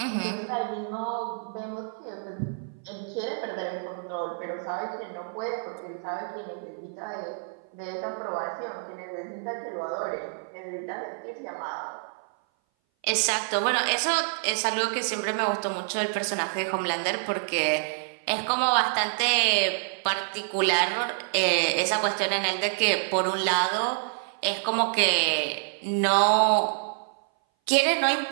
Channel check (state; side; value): silent; left; 58 dB below the other